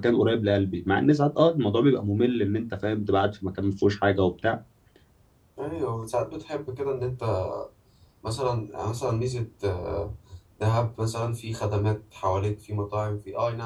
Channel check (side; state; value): both; identical; correlation 1.00